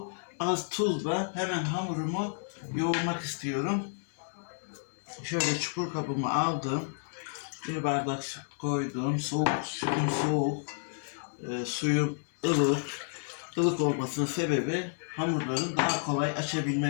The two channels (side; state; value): right; silent; digital silence